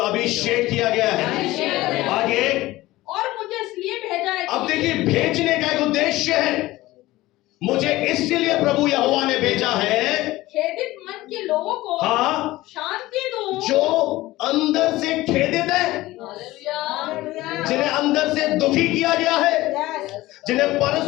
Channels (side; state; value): right; quieter; 17.9 dB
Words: अभिषेक किया गया है। आगे, और मुझे इसलिए भेजा है। अब देखिए, भेजने का एक उद्देश्य है। मुझे इसलिए प्रभु यहोवा ने भेजा है, खेदित मन के लोगों को हाँ, शांति दूं, जो अंदर से खेदित है, जिन्हें अंदर से दुखी किया गया है, जिन्हें